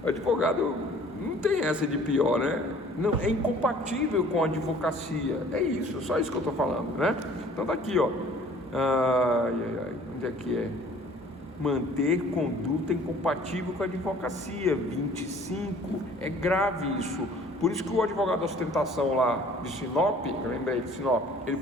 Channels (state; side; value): normal; both; correlation 0.53